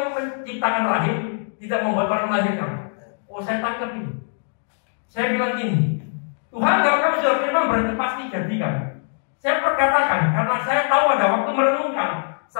menciptakan rahim tidak membuat orang melahirkan. Oh, saya tangkap ini. Saya bilang gini, Tuhan kalau kamu sudah firman berarti pasti jadikan. Saya perkatakan karena saya tahu ada waktu merenungkan.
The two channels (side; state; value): right; silent; digital silence